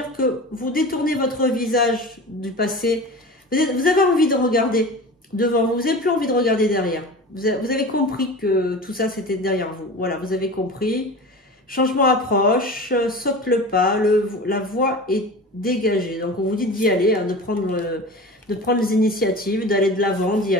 que vous détournez votre visage du passé. Vous avez envie de regarder devant vous. Vous n'avez plus envie de regarder derrière. Vous avez compris que tout ça, c'était derrière vous. Voilà, vous avez compris. Changement approche, saute le pas, la voie est dégagée. Donc, on vous dit d'y aller, hein, de prendre les initiatives, d'aller de l'avant, d'y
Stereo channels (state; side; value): normal; both; correlation 0.34